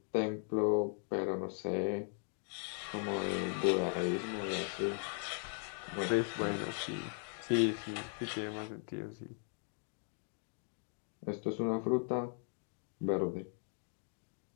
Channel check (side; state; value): right; silent; 52 dB below the other